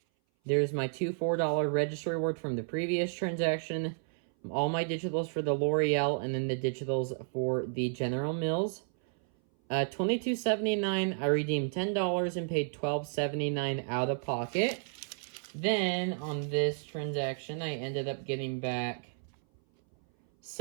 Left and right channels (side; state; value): left; silent; 57 dB below the other